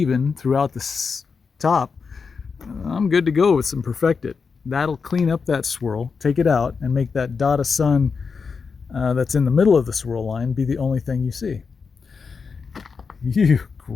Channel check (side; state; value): right; quieter; 5.3 dB